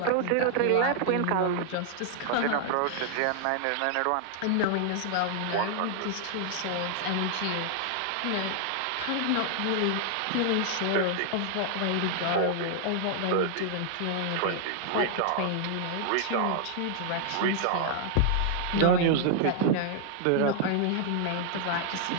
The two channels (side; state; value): both; different; correlation 0.00